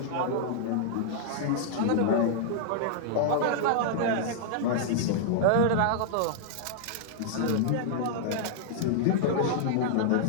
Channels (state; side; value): different; both; correlation -0.01